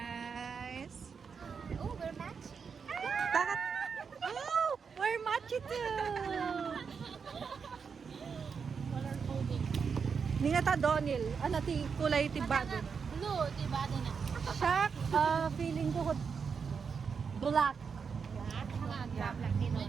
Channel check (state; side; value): quieter; left; 5.9 dB